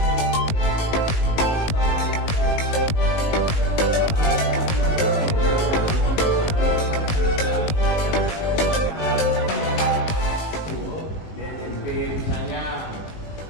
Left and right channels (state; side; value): late; right; 19 ms